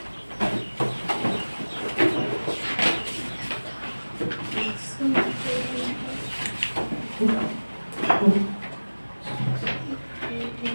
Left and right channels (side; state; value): both; inverted; correlation -1.00